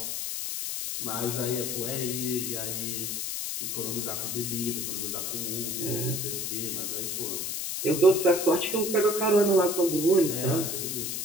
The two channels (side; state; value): left; noise; hiss, 3 dB below the sound